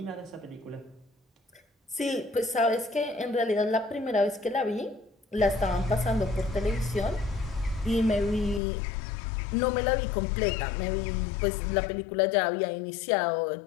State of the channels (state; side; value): drops out; right; at 8.6 s